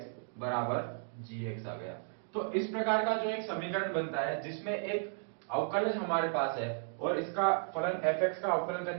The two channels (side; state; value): left; silent; digital silence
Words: बराबर gx आ गया। तो इस प्रकार का जो एक समीकरण बनता है जिसमें एक अवकलज हमारे पास है और इसका फलन fx का अवकलन